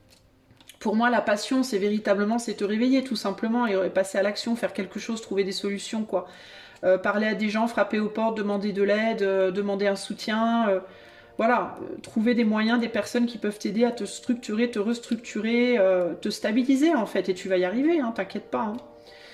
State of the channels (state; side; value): identical; both; correlation 1.00